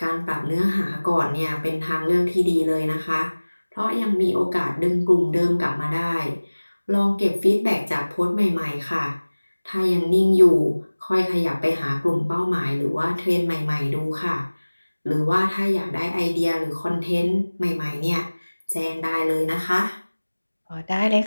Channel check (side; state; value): both; inverted; correlation -1.00